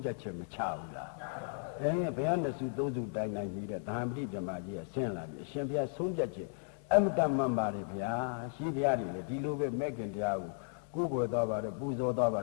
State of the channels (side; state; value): right; silent; digital silence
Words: ဖြတ်ချက်မချဘူးလားဘုရားနဲ့စုသုံးစုတိုင်နိုင်ပြီးတဲ့သာမတိဓမ္မကြီးကဆင်းလာပြီအရှင်ဘုရားဆုံးဖြတ်ချက်အမတ္တမှန်ပါတယ်ဗျာရှိဘုရားတွေလေဒီလိုပဲမဲ့ခင်တရားကိုကိုယ်ကိုယ်သွားပါတယ်ပူဇော်သွားပါ